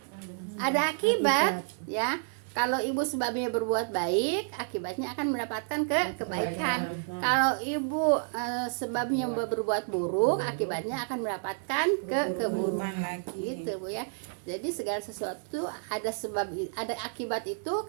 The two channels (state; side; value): silent; left; 56 dB below the other